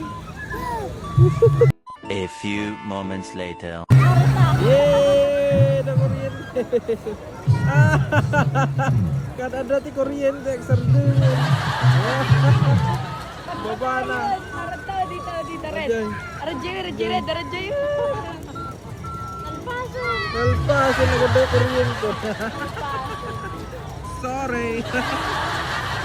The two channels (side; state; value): both; identical; correlation 1.00